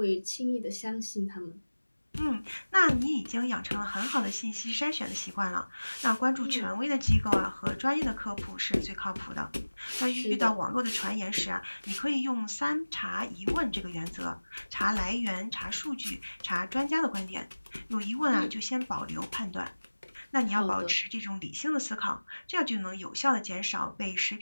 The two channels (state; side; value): inverted; both; correlation -1.00